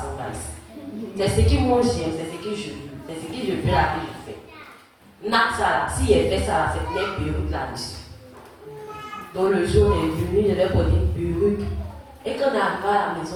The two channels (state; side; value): identical; both; correlation 1.00